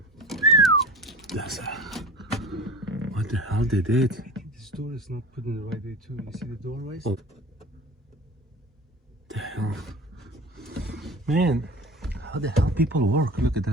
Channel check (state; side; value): normal; both; correlation 0.36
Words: That's what the hell they did. I think this door is not put in the right way too. You see the doorways? Oh. The hell? Man, how the hell people work? Look at